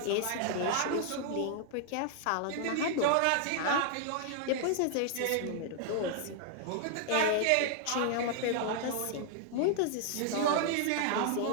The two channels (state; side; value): different; both; correlation 0.00